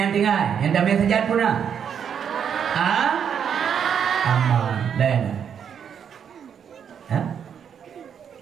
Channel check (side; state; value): left; quieter; 7.9 dB